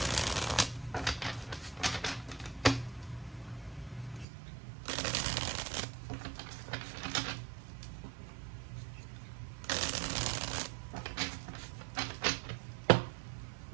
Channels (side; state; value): left; drops out; at 4.2 s